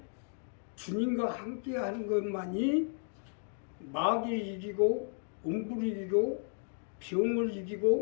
주님과 함께 하는 것만이 마귀를 이기고 음부를 이기고 병을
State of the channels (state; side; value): silent; right; 55 dB below the other